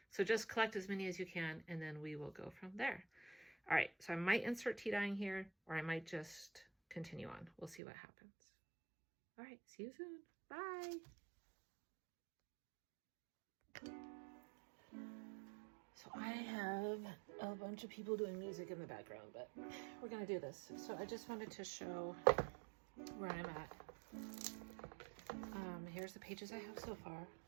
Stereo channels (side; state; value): left; drops out; at 7.8 s